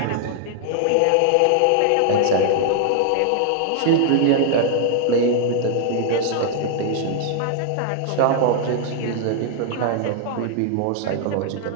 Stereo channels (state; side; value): different; both; correlation 0.00